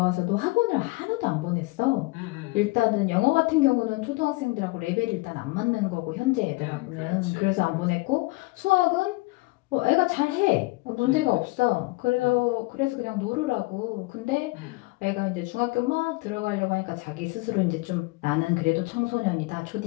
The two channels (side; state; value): right; quieter; 24.3 dB